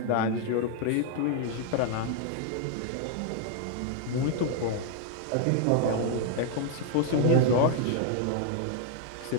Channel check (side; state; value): both; different; correlation 0.00